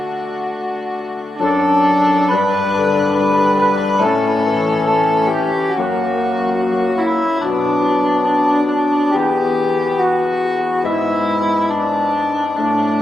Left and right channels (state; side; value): normal; both; correlation 0.88